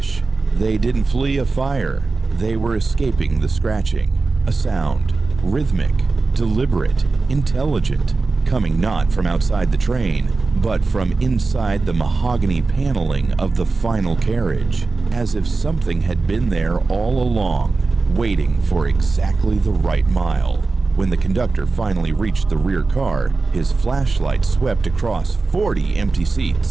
They didn't flee a fire. They were escaping the scratching, a sound, rhythmic, deliberate, intelligent, coming not from outside the train, but from inside the mahogany paneling of the final carriage, as if something had been there all along, waiting for exactly the right mile. When the conductor finally reached the rear car, his flashlight swept across 40 empty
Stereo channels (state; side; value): quieter; left; 3.9 dB